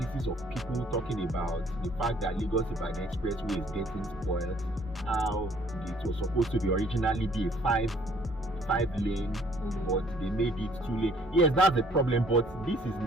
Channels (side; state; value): both; normal; correlation 0.60